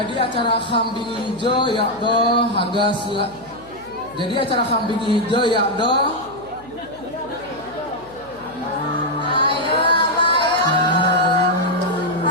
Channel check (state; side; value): noise; left; hum, 25 dB below the sound